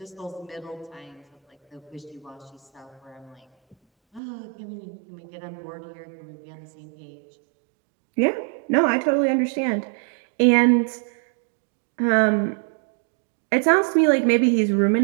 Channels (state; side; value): drops out; left; at 4.2 s